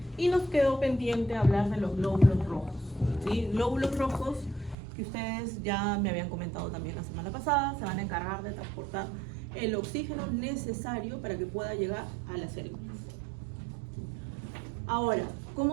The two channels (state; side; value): drops out; left; at 4.8 s